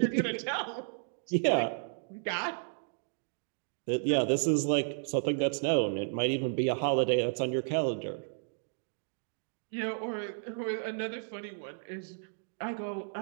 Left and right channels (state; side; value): silent; left; digital silence